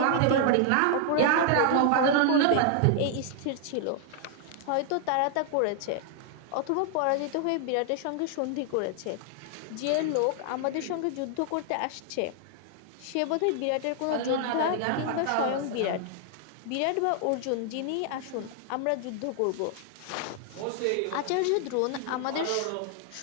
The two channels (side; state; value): both; different; correlation 0.00